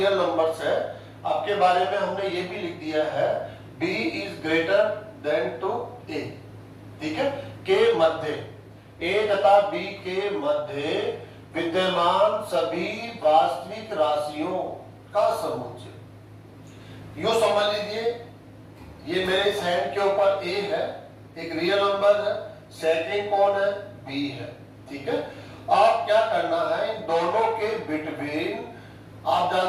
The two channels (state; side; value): identical; both; correlation 1.00